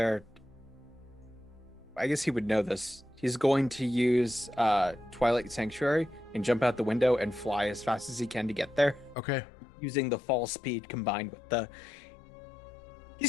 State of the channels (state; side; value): drops out; right; at 9.2 s